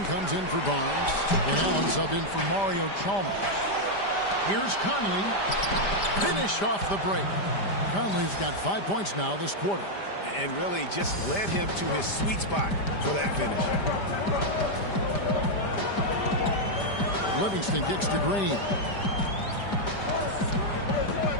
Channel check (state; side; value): late; right; 5.0 ms